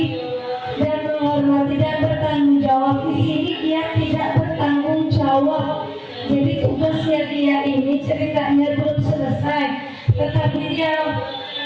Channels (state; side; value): identical; both; correlation 1.00